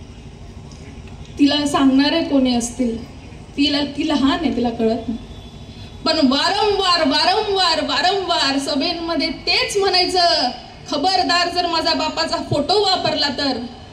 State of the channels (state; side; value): identical; both; correlation 1.00